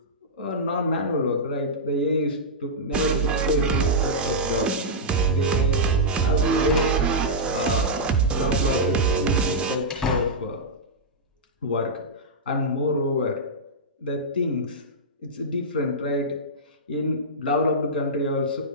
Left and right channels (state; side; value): normal; both; correlation -0.11